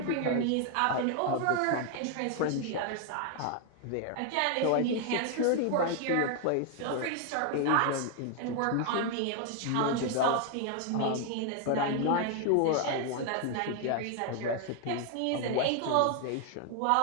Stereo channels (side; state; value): both; different; correlation 0.01